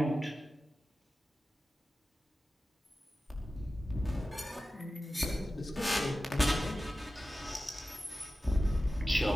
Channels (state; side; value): normal; both; correlation 0.94